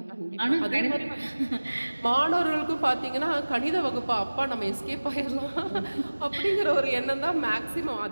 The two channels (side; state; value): both; inverted; correlation -1.00